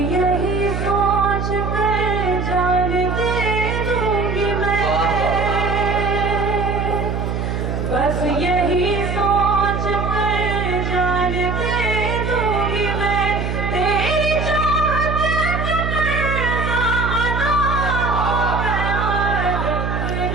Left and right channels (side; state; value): right; noise; hum, 2 dB below the sound